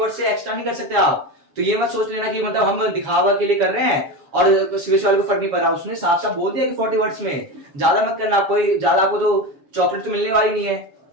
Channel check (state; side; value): late; left; 7.2 ms